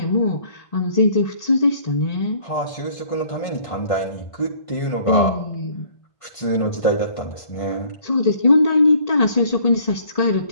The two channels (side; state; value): right; late; 1.5 ms